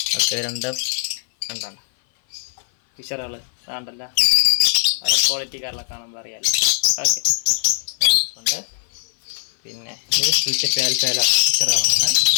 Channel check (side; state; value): right; silent; 57 dB below the other